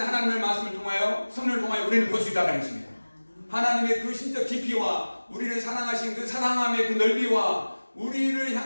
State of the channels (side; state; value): both; inverted; correlation -1.00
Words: 말씀을 통하여 성령을 통하여 우리는 볼 수 있다는 것입니다. 하나님의 그 신적 깊이와 우리를 사랑하신 그 사랑함의 그 넓이와 우리를